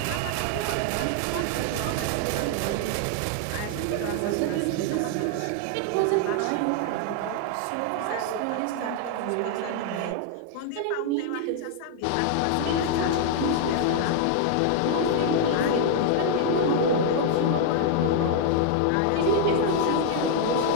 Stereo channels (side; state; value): both; different; correlation 0.00